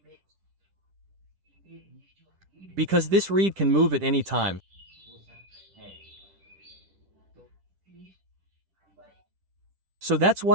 Because this reed can move at any time. So that's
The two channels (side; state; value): left; late; 10 ms